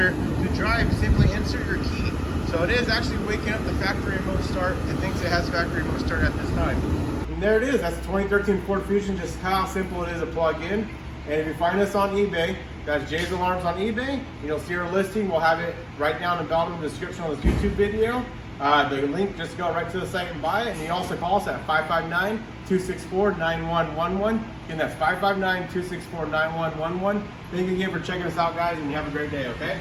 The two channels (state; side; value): identical; both; correlation 1.00